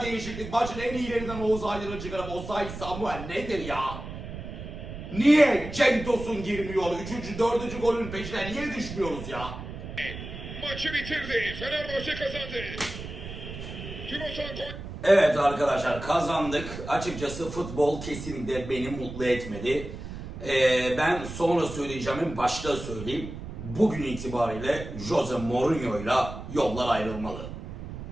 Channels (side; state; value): right; noise; rumble, 9 dB below the sound